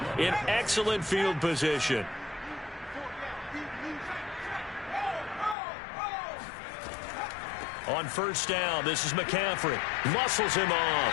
in excellent field position. On 1st down, this is McCaffrey. Muscles him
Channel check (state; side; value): drops out; right; at 5.6 s